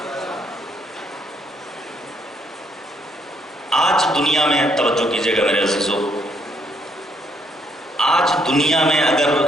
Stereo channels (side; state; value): both; normal; correlation 0.71